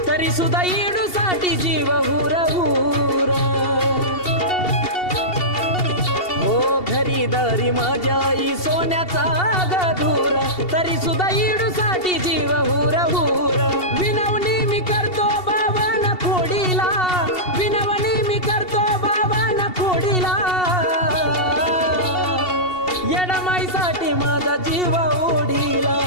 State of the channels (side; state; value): right; late; 2.7 ms